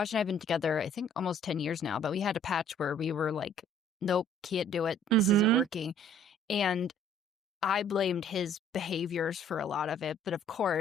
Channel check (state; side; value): normal; both; correlation 0.57